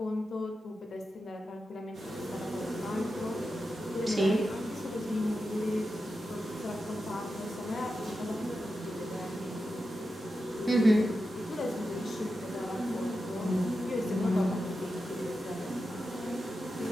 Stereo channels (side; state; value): both; normal; correlation 0.90